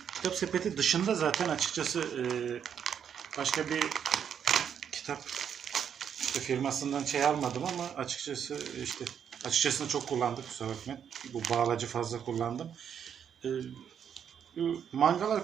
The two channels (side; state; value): left; quieter; 8.2 dB